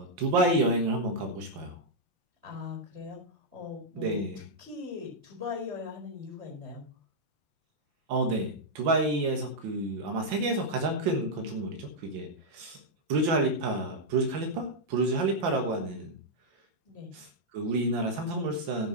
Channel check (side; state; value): left; late; 5.8 ms